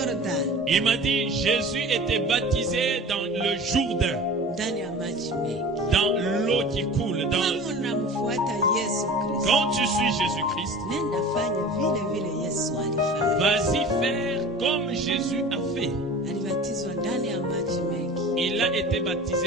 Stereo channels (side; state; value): both; normal; correlation 0.39